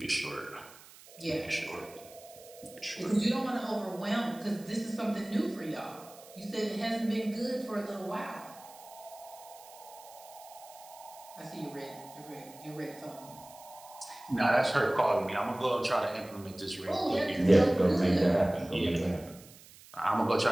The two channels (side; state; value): right; noise; hiss, 21 dB below the sound